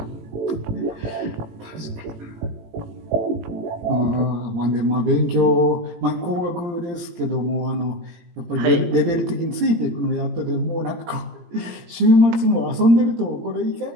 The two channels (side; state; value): left; late; 17 ms